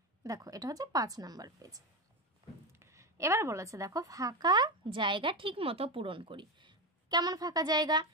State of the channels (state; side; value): normal; both; correlation 0.15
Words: দেখো এটা হচ্ছে 5 নাম্বার পেজ। এবার বলেছে দেখো ফাঁকা জায়গা ঠিক মতো পূরণ করি। কেমন ফাঁকা জায়গা?